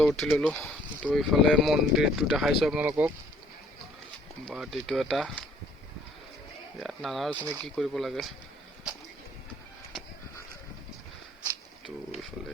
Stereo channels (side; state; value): both; normal; correlation 0.60